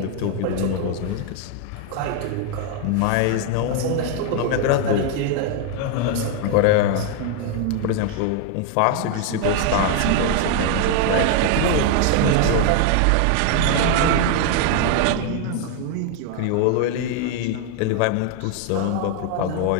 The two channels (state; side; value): different; both; correlation 0.01